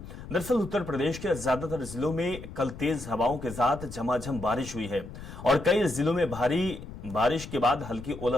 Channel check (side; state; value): left; noise; rumble, 13 dB below the sound